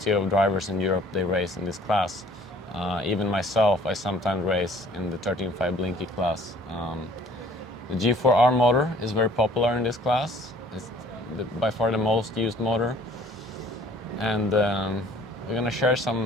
of drivers in Europe, they race in this class. Even myself, I sometimes race in the 13.5 Blinky class. The G4R motor is very popular in this class. It's by far the most used motor. And we're going to share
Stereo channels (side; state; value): both; normal; correlation 0.55